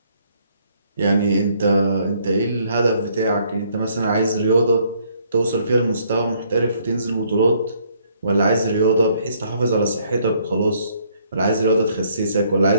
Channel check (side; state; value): both; inverted; correlation -0.66